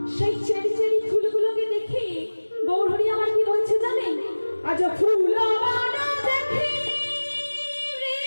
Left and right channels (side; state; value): both; inverted; correlation -1.00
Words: সেই চেরি চেরি ফুলগুলোকে দেখে গৌরহরি আমার কি বলছে জানেন? আজ ফুল দেখি